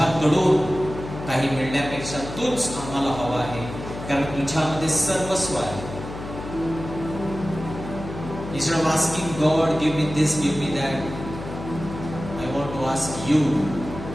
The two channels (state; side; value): noise; left; hum, 10 dB below the sound